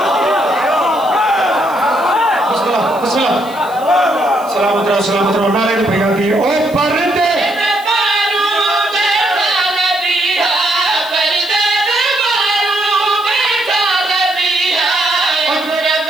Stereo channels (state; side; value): noise; right; hiss, 22 dB below the sound